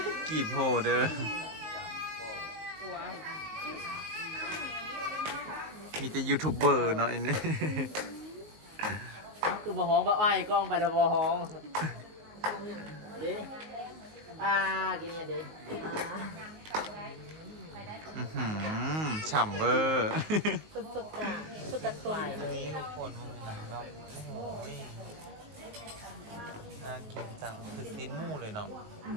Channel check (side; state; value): left; late; 19 ms